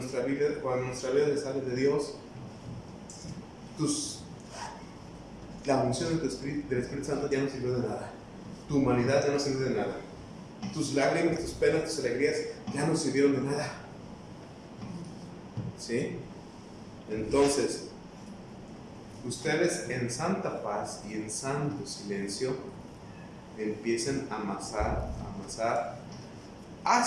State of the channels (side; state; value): both; identical; correlation 1.00